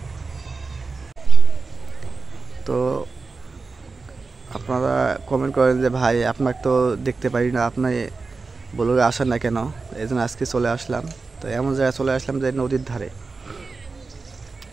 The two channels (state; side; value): quieter; left; 4.1 dB